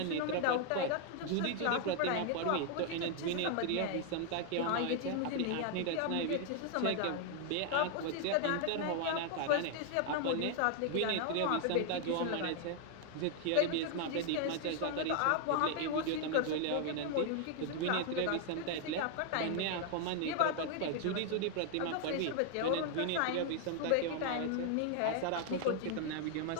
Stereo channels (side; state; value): both; different; correlation 0.00